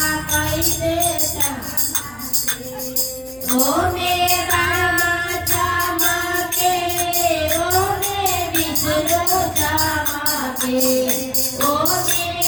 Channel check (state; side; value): noise; left; hum, 25 dB below the sound